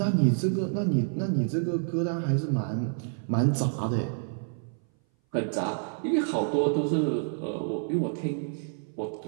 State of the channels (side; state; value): left; silent; 58 dB below the other